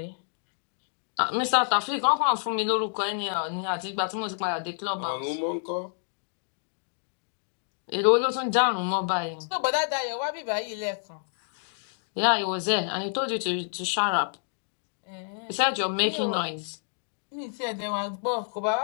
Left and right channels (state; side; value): silent; right; digital silence